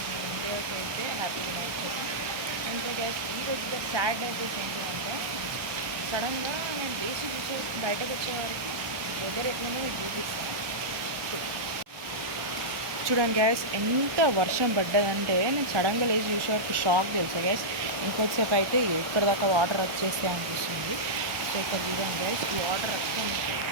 నేను ఇండియాకి అయితే హ్యాపీ వినాయక చవితి. ఇంకా గ్యాస్ ఈరోజు సాడ్ డేస్ ఏంటంటే సడన్గా నేను లేచి చూసే బయటకు వచ్చేవారికి వెదర్ ఎట్లనో మీకు చూపిస్తాను. చూడండి గ్యాస్, ఎంత వర్షం పడ్డదంటే నేను సడన్గా లేచి చూసేవారికి షాక్ తెలుసా గ్యాస్. ఇంకొద్దిసేపు అయితే ఇక్కడ దాకా వాటర్ వచ్చేస్తే అనిపిస్తుంది. సో ఇక్కడ చూడండి గ్యాస్, వాటర్ అక్కడ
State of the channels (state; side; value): late; left; 1.2 ms